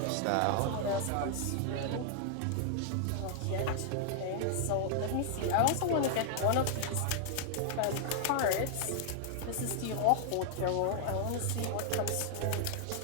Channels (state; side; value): different; both; correlation -0.01